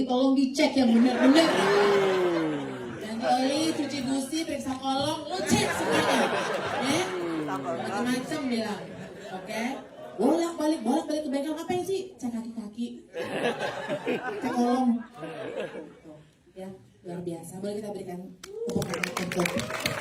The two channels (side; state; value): both; identical; correlation 1.00